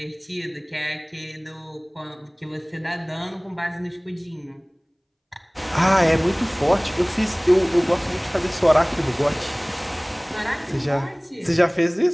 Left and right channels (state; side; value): identical; both; correlation 1.00